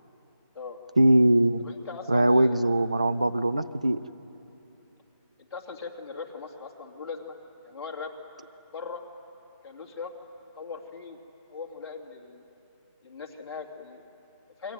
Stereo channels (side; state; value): both; inverted; correlation -0.93